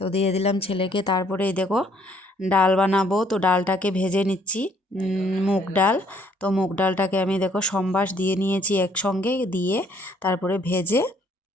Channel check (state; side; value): normal; both; correlation 0.64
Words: দিয়ে দিলাম ছেলেকে। তারপরে এই দেখো ডাল বানাবো, তো ডালটাকে ভেজে নিচ্ছি, মুগ ডাল। তো মুগ ডালটাকে আমি দেখো সম্বাস দিয়ে নিয়েছি একসঙ্গে দিয়ে, তারপরে ভেজে